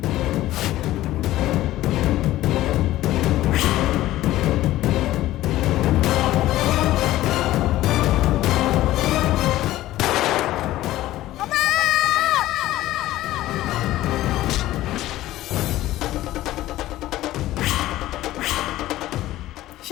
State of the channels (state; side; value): quieter; right; 15.4 dB